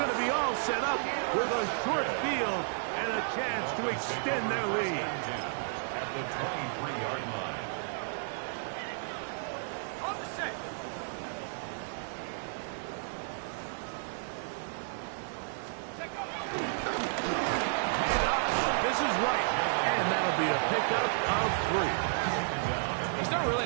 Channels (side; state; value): left; silent; digital silence